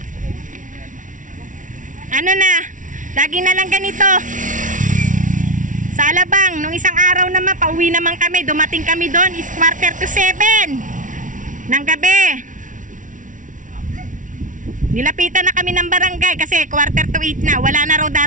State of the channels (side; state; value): left; late; 0.37 ms